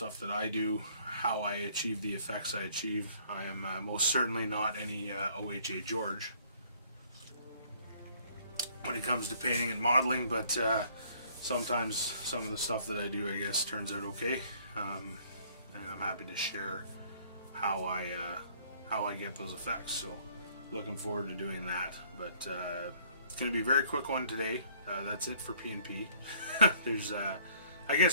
that I do, how I achieve the effects I achieve. I am most certainly not any OHA George when it comes to painting and modeling, but sometimes some of the stuff that I do, I guess, turns out okay, and I'm happy to share how I get those effects. So looking forward to doing that. But it's going to be a very quick one today. That's it for P&P. There's I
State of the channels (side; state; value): both; inverted; correlation -0.59